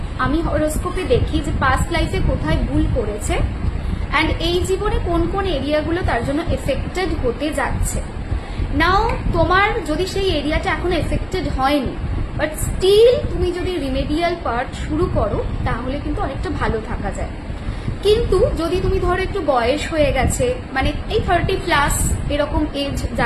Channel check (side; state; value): both; identical; correlation 1.00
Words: আমি হরোস্কোপে দেখি যে পাস্ট লাইফে কোথায় ভুল করেছে অ্যান্ড এই জীবনে কোন কোন এরিয়াগুলো তার জন্য এফেক্টেড হতে যাচ্ছে। নাও তোমার যদি সেই এরিয়াটা এখনো এফেক্টেড হয়নি, বাট স্টিল তুমি যদি রিমেডিয়াল পার্ট শুরু করো, তাহলে কিন্তু অনেকটা ভালো থাকা যায়। কিন্তু যদি তুমি ধরো একটু বয়স হয়ে গেছে, মানে এই 30+ এরকম এজ